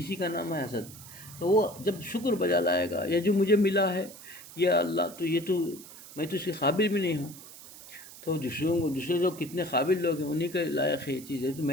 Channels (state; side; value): noise; right; hiss, 17 dB below the sound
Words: کا نام ہے حسد. تو وہ جب شکر بجا لائے گا، یہ جو مجھے ملا ہے یا اللہ، تو یہ تو میں تو اس کے قابل بھی نہیں ہوں. تو دوسرے لوگ کتنے قابل لوگ ہیں، انہیں کے لائق ہے یہ چیز ہے، تو